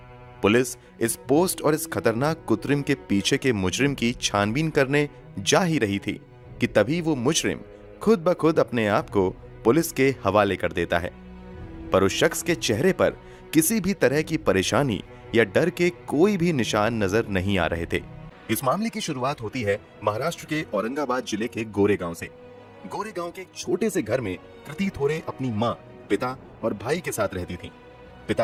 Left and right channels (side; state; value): both; identical; correlation 1.00